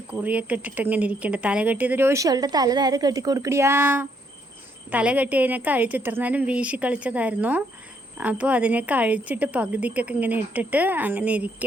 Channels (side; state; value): both; normal; correlation 0.72